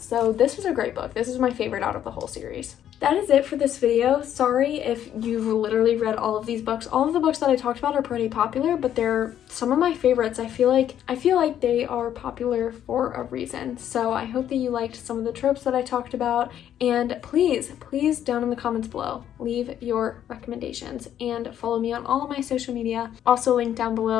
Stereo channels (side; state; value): right; quieter; 10.5 dB